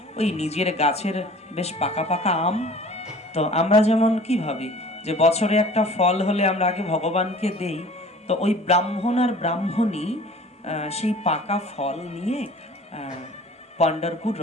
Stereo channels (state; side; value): normal; both; correlation 0.46